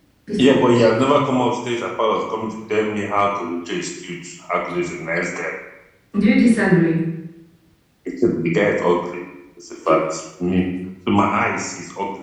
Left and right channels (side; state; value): both; identical; correlation 1.00